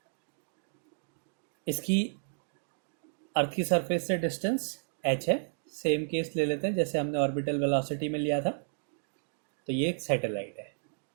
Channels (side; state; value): left; silent; digital silence